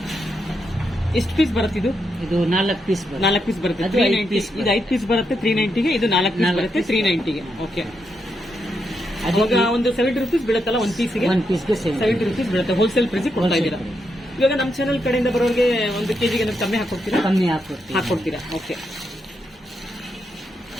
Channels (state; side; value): normal; both; correlation 0.82